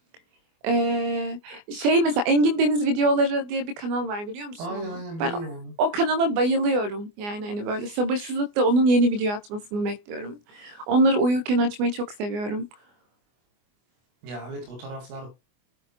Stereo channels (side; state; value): left; late; 24 ms